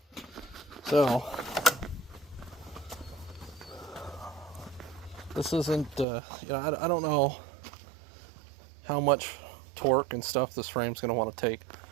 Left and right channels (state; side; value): drops out; left; at 6.1 s